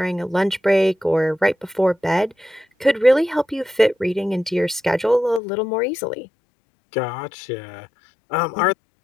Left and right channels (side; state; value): right; drops out; at 5.4 s